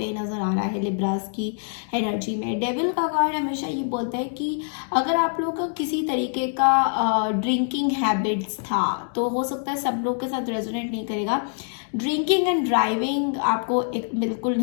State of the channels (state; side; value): silent; right; 62 dB below the other